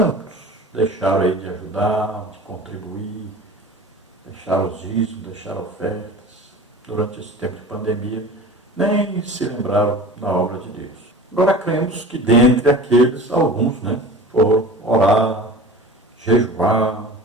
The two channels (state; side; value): normal; both; correlation 0.37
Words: deixaram aí de ajudar, de contribuir, deixaram os dízimos, deixaram ofertas durante esse tempo de pandemia, nem se lembraram da obra de Deus. Agora cremos que dentre aqueles, alguns, né, foram orar, jejuar